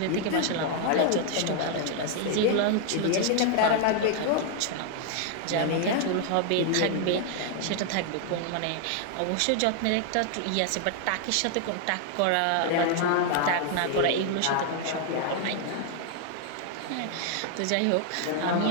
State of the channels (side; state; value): both; different; correlation 0.00